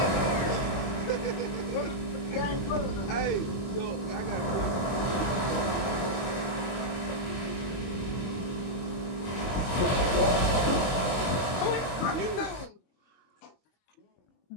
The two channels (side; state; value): right; late; 22 ms